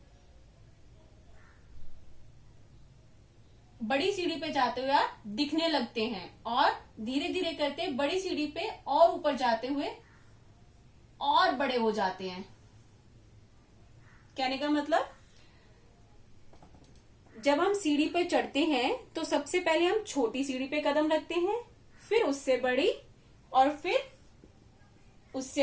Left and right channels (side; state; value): both; identical; correlation 1.00